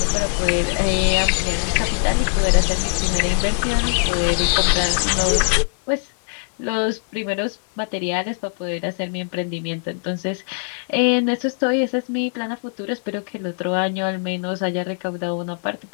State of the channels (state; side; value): silent; right; 65 dB below the other